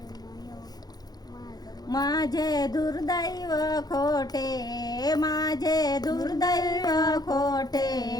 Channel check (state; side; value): late; right; 0.19 ms